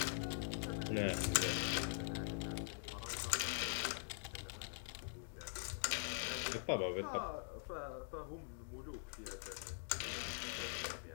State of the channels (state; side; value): silent; right; digital silence